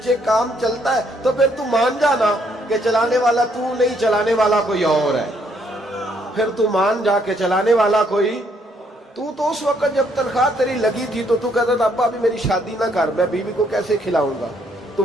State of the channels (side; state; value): both; normal; correlation 0.70